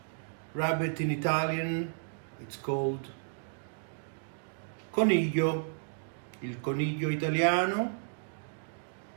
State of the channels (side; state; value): left; silent; digital silence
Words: Rabbit in Italian, it's called coniglio, il coniglio italiano.